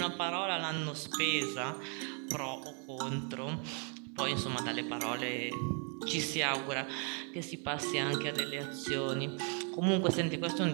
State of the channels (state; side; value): quieter; left; 39.6 dB